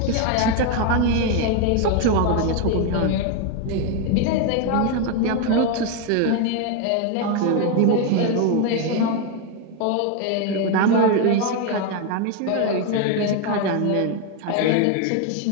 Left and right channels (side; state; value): both; different; correlation 0.01